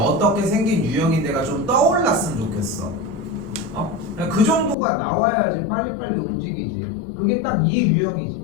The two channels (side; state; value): right; drops out; at 4.8 s